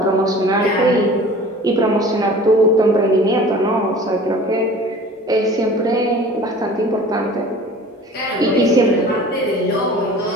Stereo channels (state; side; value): normal; both; correlation 0.43